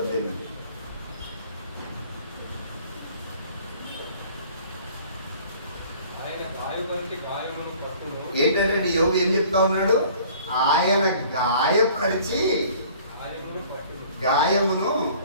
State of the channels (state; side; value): inverted; both; correlation -0.51